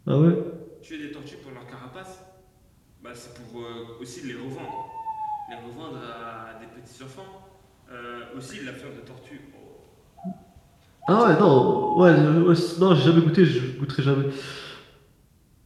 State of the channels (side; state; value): both; identical; correlation 1.00